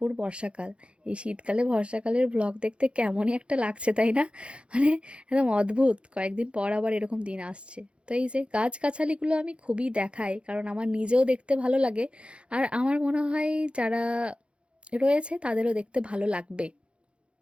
বর্ষাকাল। এই শীতকালে বর্ষাকালের ব্লগ দেখতে কেমনই একটা লাগছে, তাই না? মানে একদম অদ্ভুত, কয়েকদিন পর আবার এরকম দিন আসছে। তো এই যে গাছগাছালিগুলো আমি খুবই দেখাই, কারণ আমার নিজেও দেখতে ভালো লাগে, আর আমার মনে হয় যারা রয়েছে তাদেরও দেখতে ভালো লাগবে।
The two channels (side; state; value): left; late; 0.058 ms